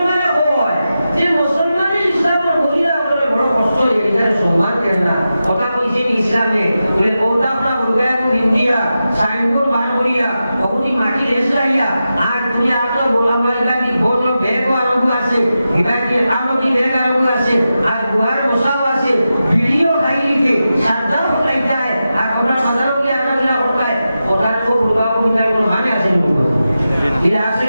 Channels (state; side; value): inverted; both; correlation -0.91